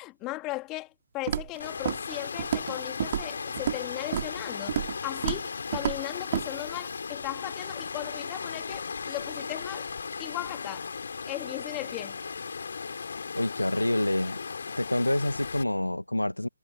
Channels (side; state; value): both; inverted; correlation -0.71